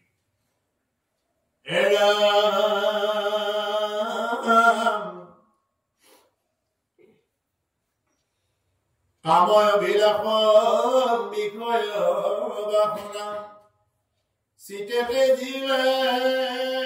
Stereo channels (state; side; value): identical; both; correlation 1.00